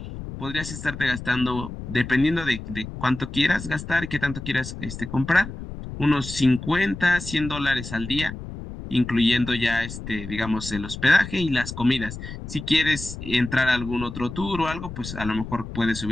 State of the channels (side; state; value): left; noise; rumble, 10 dB below the sound